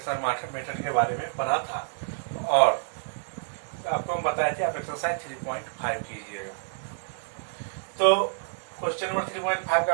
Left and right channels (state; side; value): silent; left; digital silence